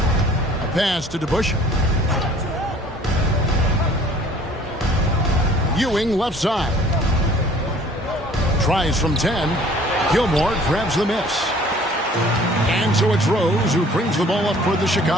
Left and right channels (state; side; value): normal; both; correlation 0.52